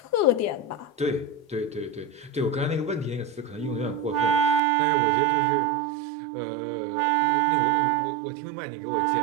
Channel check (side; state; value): left; drops out; at 4.6 s